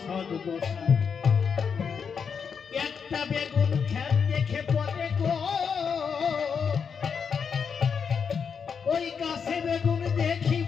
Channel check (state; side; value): quieter; right; 6.4 dB